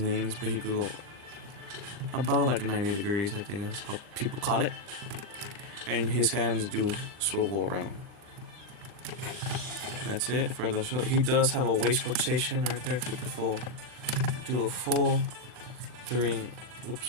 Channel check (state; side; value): late; left; 39 ms